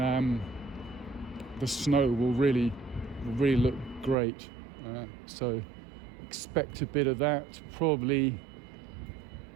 the snow will really look great. So expect a bit of that, probably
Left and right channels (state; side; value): drops out; left; at 4.2 s